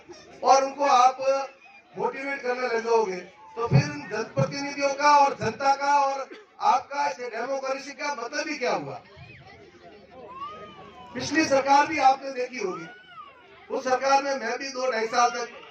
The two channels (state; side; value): identical; both; correlation 1.00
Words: और उनको आप मोटिवेट करने लग जाओगे, तो फिर जनप्रतिनिधियों का और जनता का और आपका डेमोक्रेसी का मतलब ही क्या हुआ। पिछली सरकार भी आपने देखी होगी, उस सरकार में मैं भी 2-2.5 साल तक